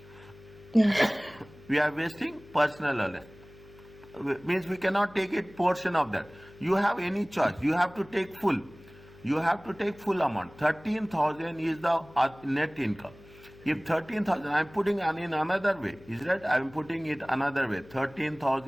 Yes. We are wasting personal allowance. Means we cannot take it portion of that. You have any choice. You have to take full. You have to take full amount. 13,000 is the net income. If 13,000, I am putting in another way. Is that? I am putting it another way.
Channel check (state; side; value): noise; left; hum, 22 dB below the sound